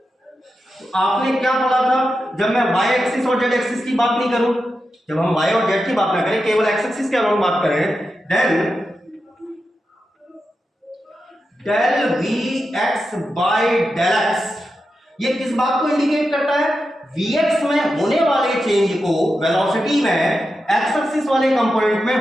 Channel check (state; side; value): normal; both; correlation 0.89